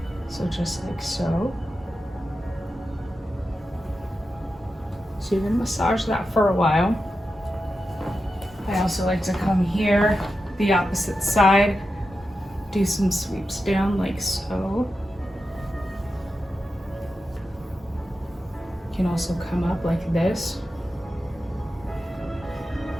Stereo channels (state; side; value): normal; both; correlation 0.90